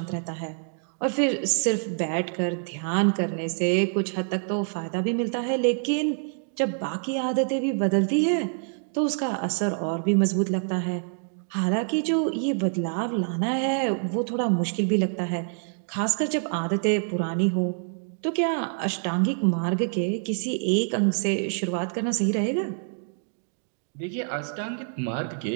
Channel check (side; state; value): left; silent; 61 dB below the other